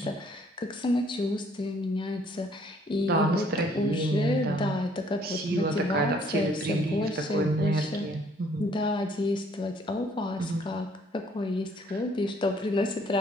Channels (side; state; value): both; normal; correlation 0.62